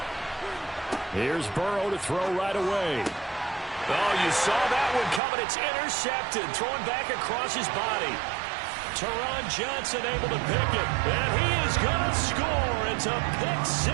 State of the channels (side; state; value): left; drops out; at 5.2 s